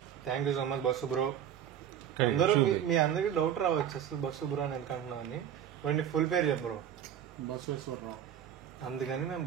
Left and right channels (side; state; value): left; quieter; 9.7 dB